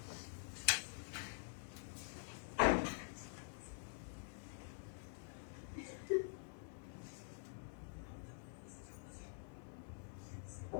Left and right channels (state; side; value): silent; right; digital silence